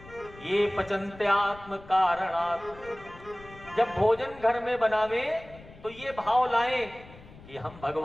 ये पचन्ते आत्म कारणात्। जब भोजन घर में बनावे तो ये भाव लाएं कि हम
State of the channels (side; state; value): left; noise; rumble, 20 dB below the sound